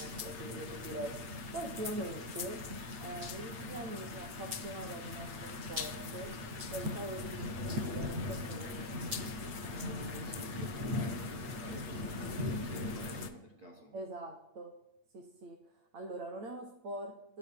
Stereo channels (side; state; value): left; late; 8.8 ms